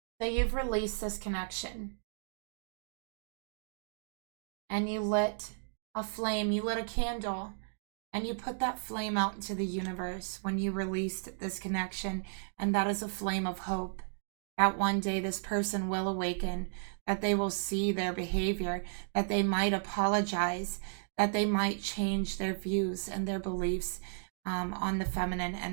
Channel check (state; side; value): silent; left; digital silence